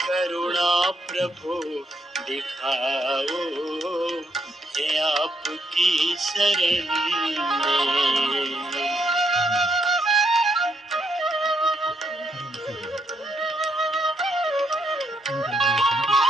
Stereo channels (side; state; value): both; normal; correlation 0.75